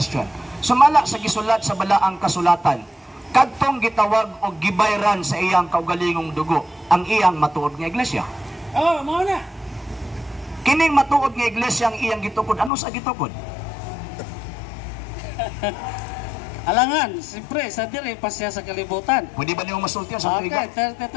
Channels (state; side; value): drops out; right; at 12.7 s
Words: Sumala sa gisulat sa balaang kasulatan, kadtong Kristong gitawag o gibayran sa iyang kaugalingong dugo ang iyang matuod nga iglesia. Oh, mao na. Kining matuod nga iglesia ang iyang gitukod. Ano sa gitukod? Alangan, siyempre, sa diri pa siya sa kalibutan. Pwede ba niyo masultihan sa Okay, tuigan?